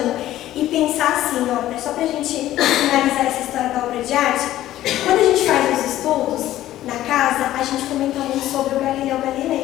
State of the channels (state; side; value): quieter; right; 13.9 dB